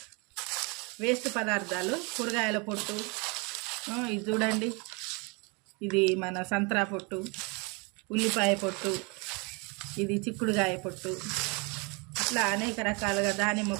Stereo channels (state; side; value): quieter; left; 30.6 dB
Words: వేస్ట్ పదార్థాలు, కూరగాయల పొట్టు, ఇది చూడండి, ఇది మన సంత్రా పొట్టు, ఉల్లిపాయ పొట్టు, ఇది చిక్కుడుగాయ పొట్టు, ఇట్లా అనేక రకాలుగా